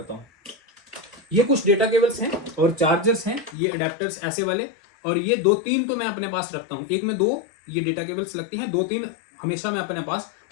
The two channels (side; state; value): right; drops out; at 3.6 s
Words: हूं। ये कुछ डेटा केबल्स हैं और चार्जर्स हैं, ये अडेप्टर्स ऐसे वाले, और ये 2-3 तो मैं अपने पास रखता हूँ। एक में 2 ये डेटा केबल्स लगती हैं, 2-3 हमेशा मैं अपने पास